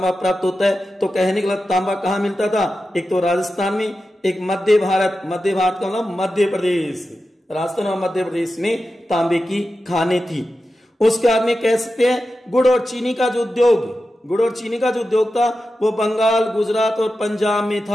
प्राप्त होता है। तो कहने के मतलब तांबा कहाँ मिलता था, एक तो राजस्थान में, एक मध्य भारत का मतलब मध्य प्रदेश, राजस्थान और मध्य प्रदेश में तांबे की खानें थी। उसके बाद में कह सकते हैं गुड़ और चीनी का जो उद्योग था वो बंगाल, गुजरात और पंजाब में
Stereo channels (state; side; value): normal; both; correlation 0.91